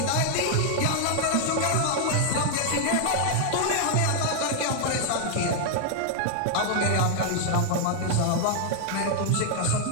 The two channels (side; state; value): both; different; correlation 0.00